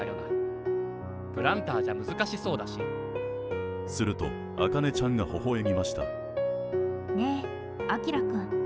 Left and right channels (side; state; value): both; identical; correlation 1.00